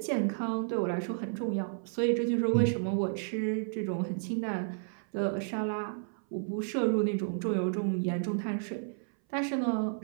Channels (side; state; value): left; silent; 57 dB below the other